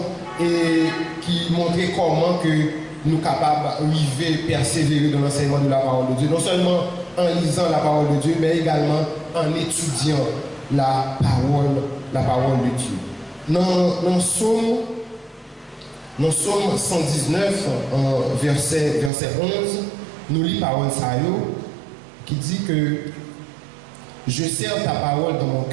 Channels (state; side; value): drops out; left; at 19.1 s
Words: et qui montrait comment que nous sommes capables d'arriver, persévérer dans l'enseignement de la parole de Dieu. Non seulement en lisant la parole de Dieu, mais également en étudiant la parole de Dieu. Dans Psaume 119, verset 11, nous lisons parole Sayo qui dit que je serre ta parole dans mon